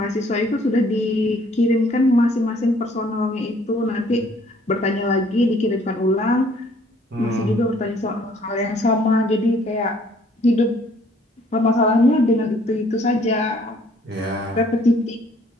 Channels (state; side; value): normal; both; correlation 0.60